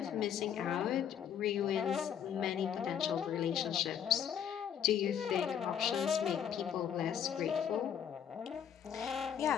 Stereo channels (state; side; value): quieter; right; 8.7 dB